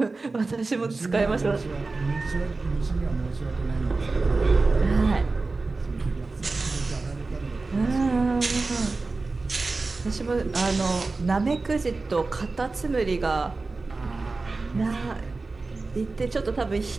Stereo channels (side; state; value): left; quieter; 3.7 dB